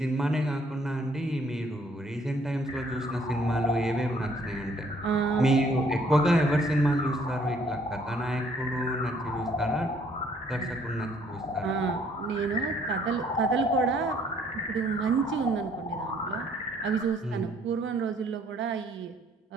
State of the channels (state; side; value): normal; both; correlation 0.63